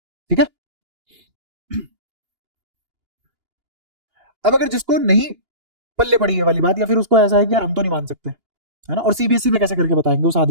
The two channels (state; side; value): late; left; 2.8 ms